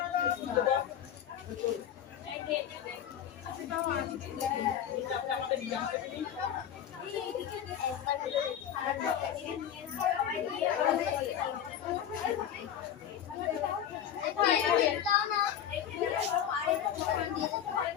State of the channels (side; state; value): right; quieter; 9.7 dB